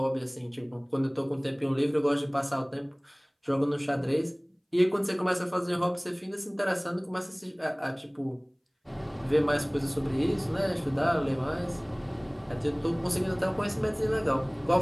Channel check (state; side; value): identical; both; correlation 1.00